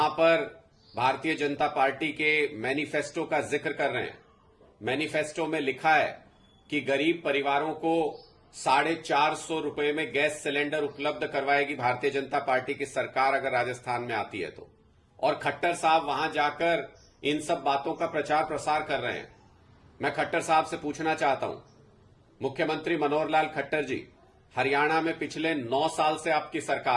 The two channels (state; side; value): identical; both; correlation 1.00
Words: पर भारतीय जनता पार्टी के मैनिफेस्टो का जिक्र कर रहे हैं। मैनिफेस्टो में लिखा है कि गरीब परिवारों को 450 रुपए में गैस सिलेंडर उपलब्ध करवाएगी भारतीय जनता पार्टी की सरकार अगर राजस्थान में आती है तो। और खट्टर साहब वहां जाकर इन सब बातों का प्रचार प्रसार कर रहे हैं। मैं खट्टर साहब से पूछना चाहता हूं, मुख्यमंत्री मनोहर लाल खट्टर जी, हरियाणा में पिछले 9 साल से आपकी